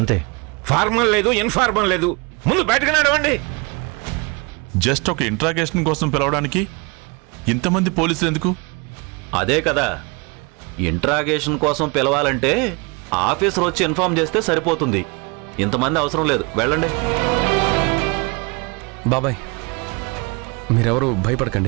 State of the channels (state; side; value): quieter; left; 29.2 dB